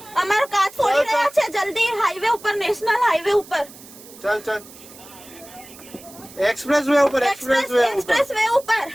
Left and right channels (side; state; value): right; noise; hiss, 20 dB below the sound